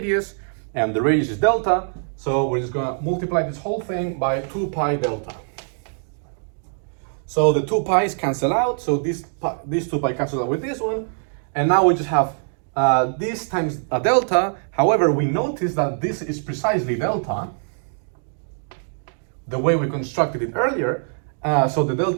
and the radius is delta. So we're just going to multiply this whole thing by 2 pi delta. So the 2 pi's cancel out, so these 2 pi cancel out with this one, and now we just have this times a delta. However, we notice that this is precisely delta, the way we constructed it earlier, so the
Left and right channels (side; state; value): left; silent; 64 dB below the other